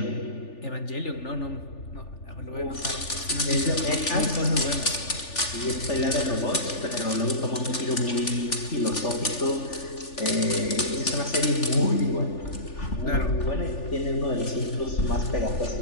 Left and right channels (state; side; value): late; right; 3.4 ms